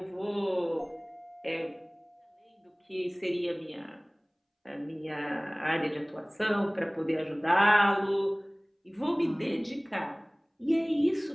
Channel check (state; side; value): identical; both; correlation 1.00